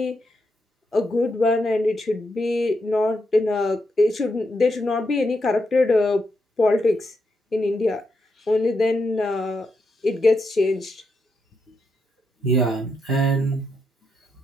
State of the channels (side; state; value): both; normal; correlation 0.82